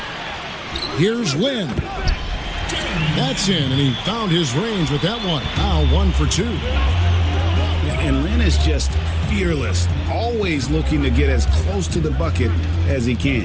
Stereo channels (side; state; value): both; identical; correlation 1.00